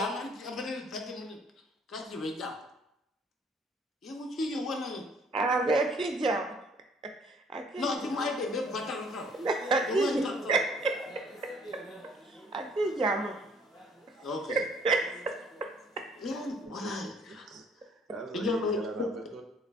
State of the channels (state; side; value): normal; both; correlation 0.59